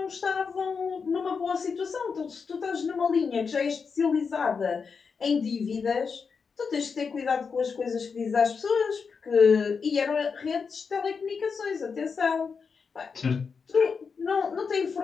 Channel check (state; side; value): quieter; right; 5.5 dB